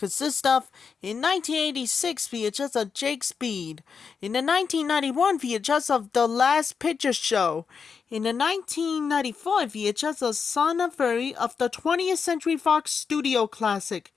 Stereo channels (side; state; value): right; quieter; 5.9 dB